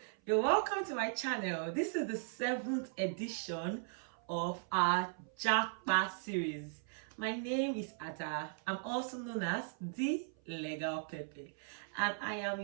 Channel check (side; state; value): left; silent; 53 dB below the other